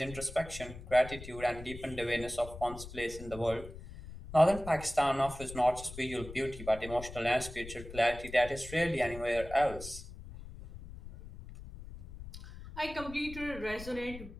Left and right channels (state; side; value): noise; left; rumble, 13 dB below the sound